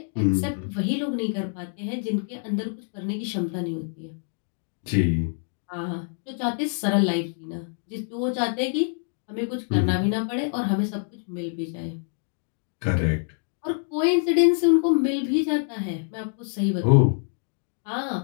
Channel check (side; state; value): right; silent; 61 dB below the other